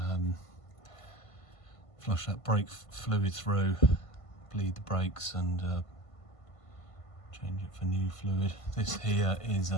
flush that brake fluid through, bleed the brakes and change it for new fluid. This here is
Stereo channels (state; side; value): late; right; 1.5 ms